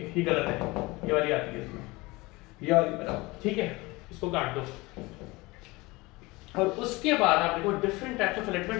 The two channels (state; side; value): quieter; right; 22.8 dB